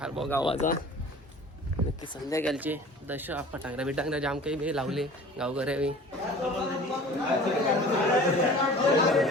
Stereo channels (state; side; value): normal; both; correlation 0.44